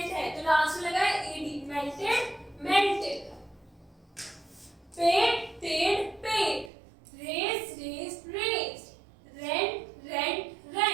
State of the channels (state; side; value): drops out; left; at 6.7 s